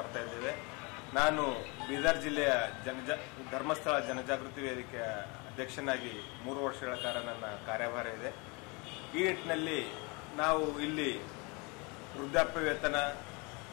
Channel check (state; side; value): quieter; right; 29.3 dB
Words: ಇದ್ದೇವೆ. ನಾನು ಬೀದರ್ ಜಿಲ್ಲೆಯ ಧರ್ಮಸ್ಥಳ ಜನಜಾಗೃತಿ ವೇದಿಕೆಯ ಅಧ್ಯಕ್ಷನಾಗಿ 3 ವರ್ಷಗಳ ಕಾಲ ನನ್ನ ಕಾರ್ಯಭಾರ ಇದೆ. ಈ ನಿಟ್ಟಿನಲ್ಲಿ ನಾವು ಇಲ್ಲಿ ವೃದ್ಧಾಪ್ಯ ವೇತನ